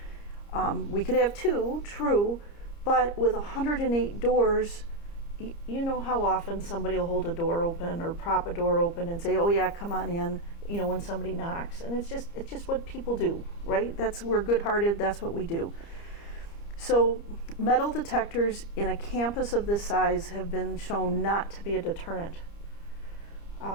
We could have 2, true, but with 108 doors, you know how often somebody will hold a door open or prop a door open and say, "Oh yeah, come on in," when somebody knocks. And it's just what people do, right? We're good-hearted, that's what we do. So metal detectors in a campus of this size have been shown not to be a deterrent.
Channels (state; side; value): late; right; 30 ms